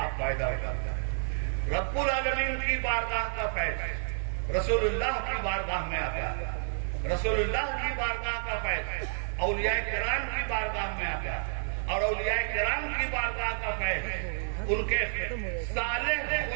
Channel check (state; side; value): silent; left; digital silence